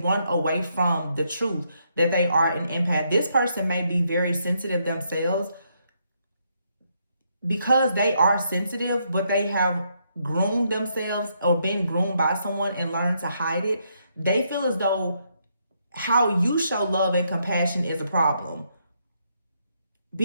run away from the truth that they are an empath. This person may be very sensitive themselves, because they are sensitive, but they have groomed themselves or been groomed by someone and learned to hide it. They feel as though how you show love and compassion is a problem,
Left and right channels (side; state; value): both; inverted; correlation -0.76